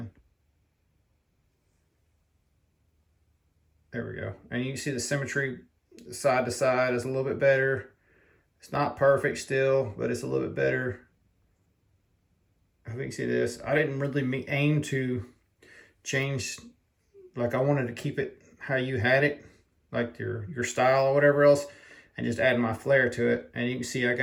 There we go. And you can see the symmetry side to side is a little bit better. It's not perfect still, but it's a little bit better. I think you can see this. I didn't really aim to change, like I wanted to keep it how you had it, like your style or whatever else, and just add my flair to it. And you can see I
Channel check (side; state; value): both; identical; correlation 1.00